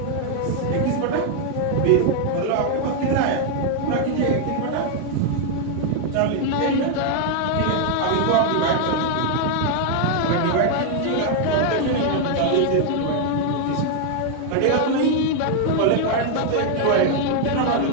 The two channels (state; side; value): different; both; correlation 0.00